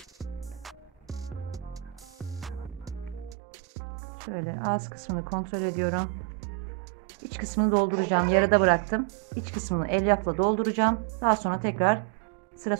Şöyle ağız kısmını kontrol ediyorum. İç kısmını dolduracağım. Yarıda bıraktım. İç kısmını elyafla dolduracağım. Daha sonra tekrar sıra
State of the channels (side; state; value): left; drops out; at 3.4 s